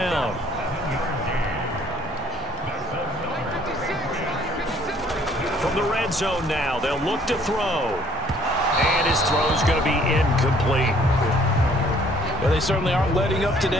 From the red zone now, they'll look to throw. And his throw's going to be incomplete. Well, they certainly aren't letting up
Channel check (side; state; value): both; normal; correlation 0.59